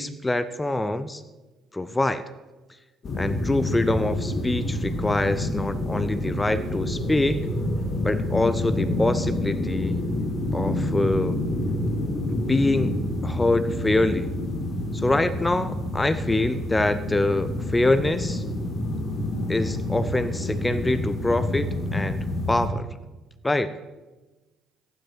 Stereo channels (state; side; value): normal; both; correlation 0.86